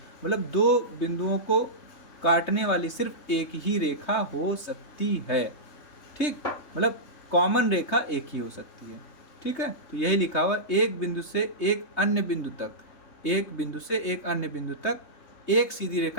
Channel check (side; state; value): right; late; 3.2 ms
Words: मतलब 2 बिंदुओं को काटने वाली सिर्फ एक ही रेखा हो सकती है। ठीक, मतलब कॉमन रेखा एक ही हो सकती है। ठीक है, तो यही लिखा हुआ, एक बिंदु से एक अन्य बिंदु तक, एक बिंदु से एक अन्य बिंदु तक एक सीधी